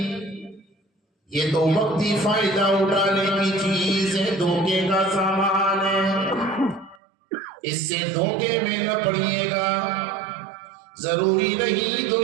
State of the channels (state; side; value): drops out; left; at 7.0 s